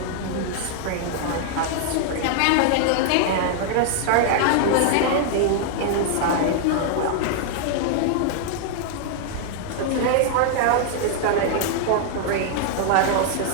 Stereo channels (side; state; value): both; different; correlation 0.00